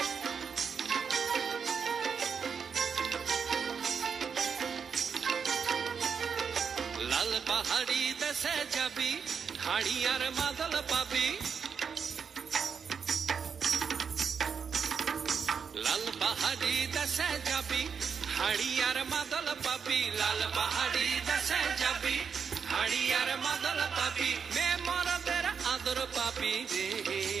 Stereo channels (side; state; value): left; quieter; 6.4 dB